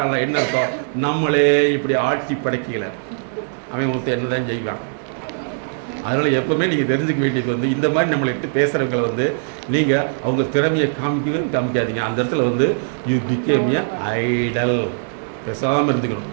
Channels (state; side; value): silent; left; digital silence